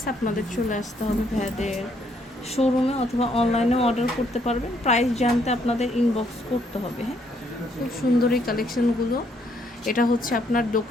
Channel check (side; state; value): both; normal; correlation 0.70